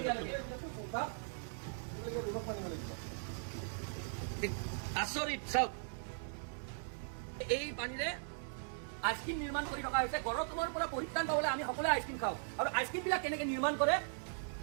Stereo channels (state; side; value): silent; left; digital silence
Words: আচৰিত চাওক এই পানীৰে আইসক্ৰিম নিৰ্মাণ কৰি থকা হৈছে গৰমৰ পৰা পৰিত্ৰাণ পাবলৈ আমি সকলোৱে আইসক্ৰিম খাওঁ আৰু আইসক্ৰিম বিলাক কেনেকে নিৰ্মাণ কৰে